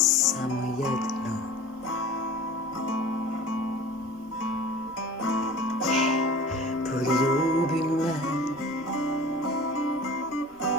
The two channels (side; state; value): both; normal; correlation 0.40